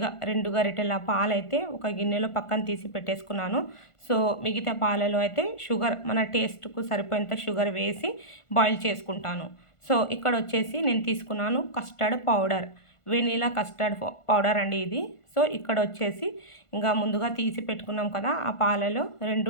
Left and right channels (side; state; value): right; late; 1.5 ms